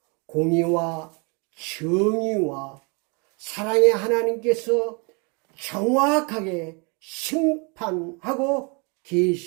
공의와 정의와 사랑의 하나님께서 정확하게 심판하고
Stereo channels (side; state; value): left; quieter; 32.8 dB